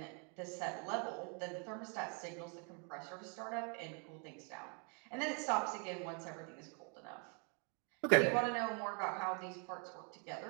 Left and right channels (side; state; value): left; quieter; 37.4 dB